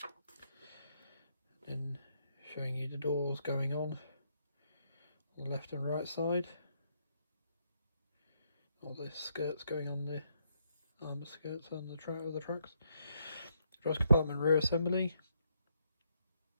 And showing you the doors going on the left and right side. All the skirts going on, the armoured skirts on the tracks. Cross compartment rear assembly.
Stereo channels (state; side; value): inverted; both; correlation -0.76